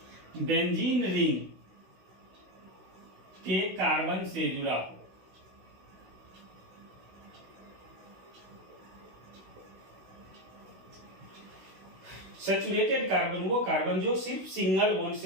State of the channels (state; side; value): late; left; 16 ms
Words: बेंजीन रिंग के कार्बन से जुड़ा हो। सैचुरेटेड कार्बन वो कार्बन जो सिर्फ सिंगल बॉन्ड